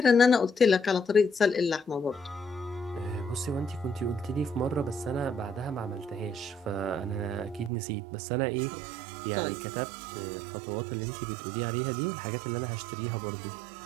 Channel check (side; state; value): left; drops out; at 7.7 s